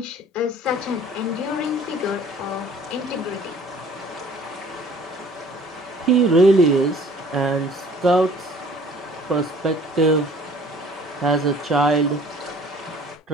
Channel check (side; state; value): both; normal; correlation 0.52